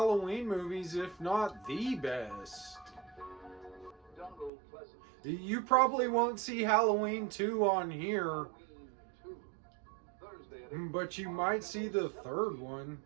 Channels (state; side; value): drops out; left; at 4.5 s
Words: movies, if not the best. You probably won't see Halloween 2 on here, but you might see the third one.